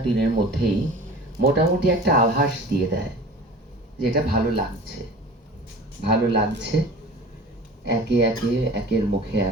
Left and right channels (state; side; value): normal; both; correlation 0.39